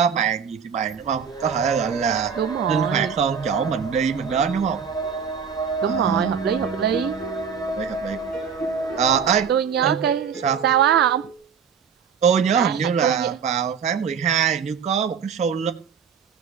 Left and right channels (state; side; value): quieter; left; 7.0 dB